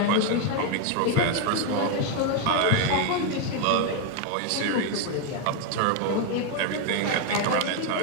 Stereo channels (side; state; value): both; different; correlation 0.01